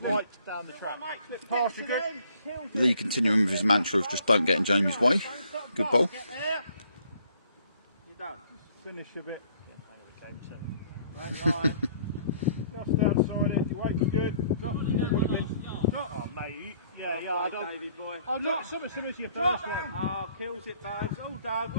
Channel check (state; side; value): inverted; both; correlation -0.62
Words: slight down the track. Slip past you, good. Lee continuing with his mantra of just don't get in Jamie's way. Good bowl. Get there. You're done. Finish a bit. Right line. Just outside it. Your weight was good. Drop. Drop. Oh, mate. Yeah, I don't. Davey boy. Oh, look, similar to your first one. Oh, kills it, babes. All done.